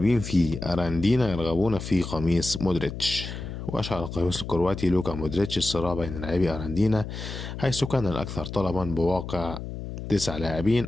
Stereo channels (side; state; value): left; noise; hum, 8 dB below the sound